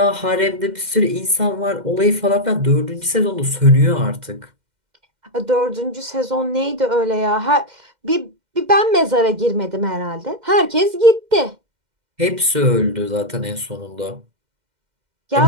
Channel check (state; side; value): late; left; 2.1 ms